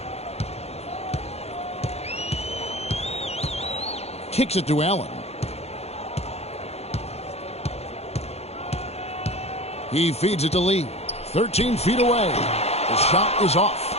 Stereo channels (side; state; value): right; late; 0.30 ms